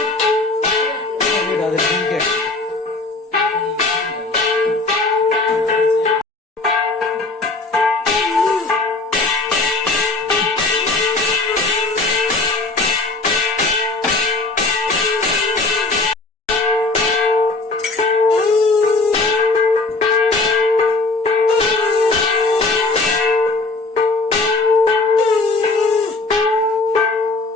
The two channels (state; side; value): quieter; right; 3.5 dB